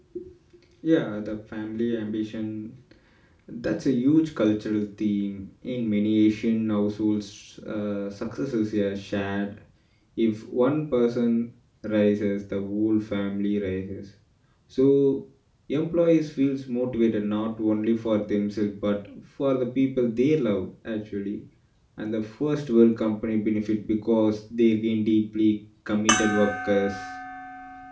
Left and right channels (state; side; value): identical; both; correlation 1.00